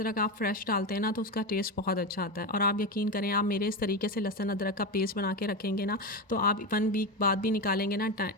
आप फ्रेश डालते हैं ना तो उसका टेस्ट बहुत अच्छा आता है। और आप यकीन करें, आप मेरे इस तरीके से लहसुन अदरक का पेस्ट बना के रखेंगे ना, तो आप 1 वीक बाद भी निकालेंगे ना,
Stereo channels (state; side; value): normal; both; correlation 0.17